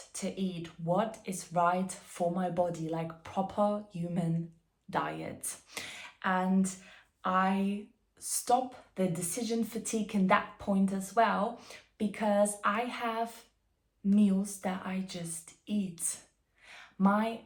to eat, what is right for my body, like proper human diet. And I stop the decision fatigue in that point as well, because I have meals that I just eat. My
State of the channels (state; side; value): identical; both; correlation 1.00